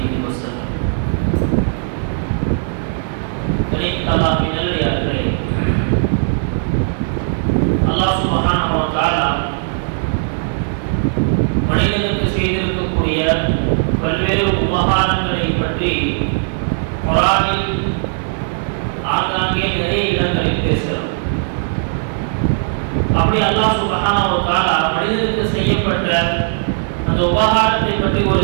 وسلم. அல்லாஹ் சுப்ஹானஹு வ தஆலா மனிதனுக்கு செய்திருக்கக்கூடிய பல்வேறு உபகாரங்களை பற்றி குர்ஆனில் ஆங்காங்கே நிறைய இடங்களில் பேசுகிறார். அப்படி அல்லாஹ் சுப்ஹானஹு வ தஆலா மனிதனுக்கு செய்யப்பட்ட அந்த உபகாரத்தை பற்றி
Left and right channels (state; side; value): silent; left; digital silence